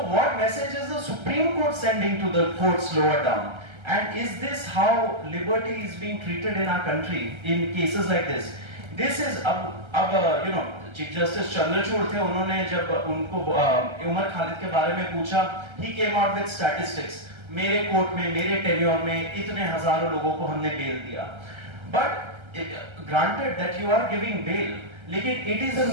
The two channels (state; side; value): late; left; 1.3 ms